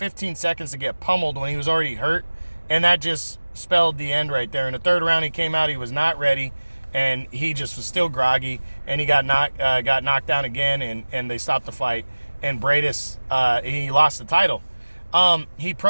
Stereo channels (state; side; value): inverted; both; correlation -1.00